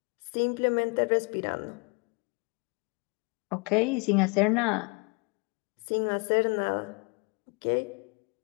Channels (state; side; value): quieter; right; 32.3 dB